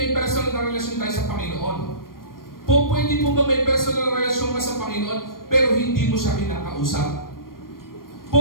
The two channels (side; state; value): right; late; 0.91 ms